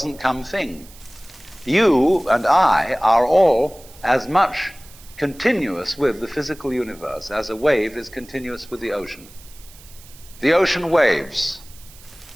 come thing. You and I are all as much continuous with the physical universe as a wave is continuous with the ocean. The ocean waves,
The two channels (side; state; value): right; noise; hiss, 22 dB below the sound